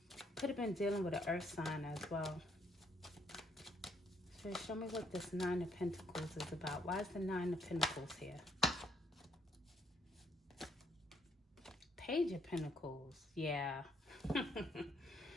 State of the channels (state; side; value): normal; both; correlation 0.71